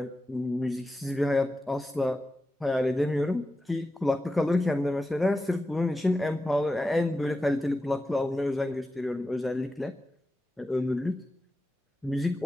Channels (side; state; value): both; normal; correlation 0.93